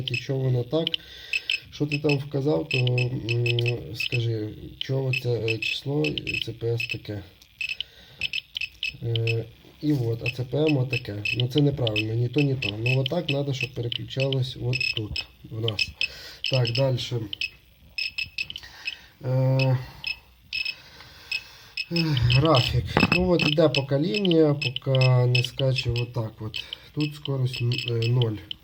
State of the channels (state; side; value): identical; both; correlation 1.00